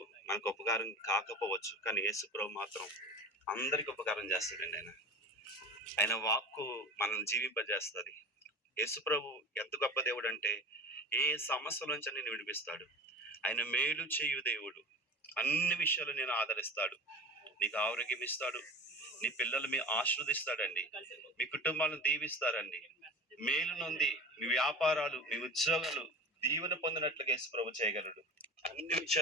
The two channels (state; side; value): normal; both; correlation 0.34